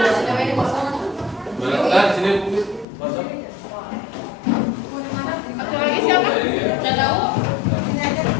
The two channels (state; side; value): drops out; right; at 2.9 s